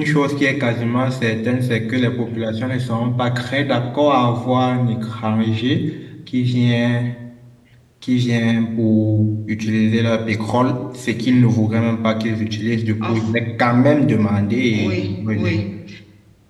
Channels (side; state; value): both; identical; correlation 1.00